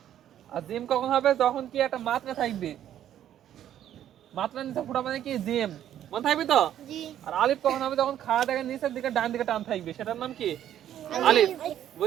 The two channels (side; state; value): left; quieter; 11.1 dB